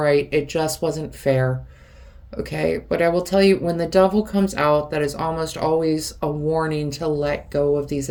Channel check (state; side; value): identical; both; correlation 1.00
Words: it just wasn't fair, okay? But I will tell you, when the devil comes out, that is almost always a warning to let go of these